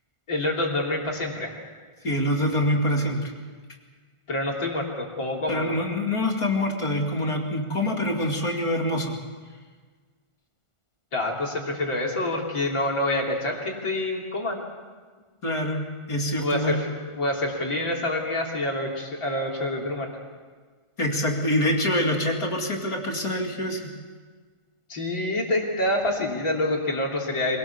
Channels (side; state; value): right; late; 1.5 ms